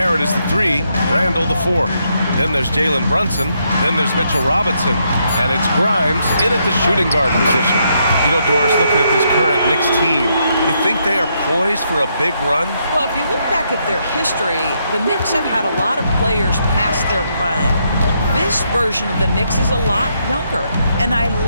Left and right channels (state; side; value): inverted; both; correlation -0.77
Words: is the 3, Randall the 4. Then there's Jalen Brunson. Then there's Mitchell Robinson. And it's Grimes in at the shooting guard position. Doris, looking at this current Knicks team, you think they are poised for a big run? Well, if you look back at their history, the Knicks have had a lot of players past their prime. This version of the Knicks is a lot younger, and I